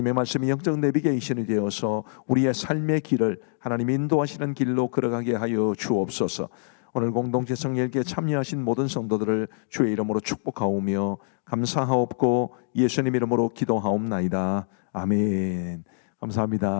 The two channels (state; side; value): silent; right; digital silence